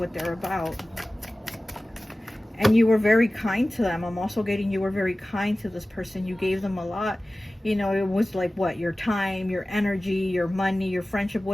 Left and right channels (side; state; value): both; normal; correlation 0.97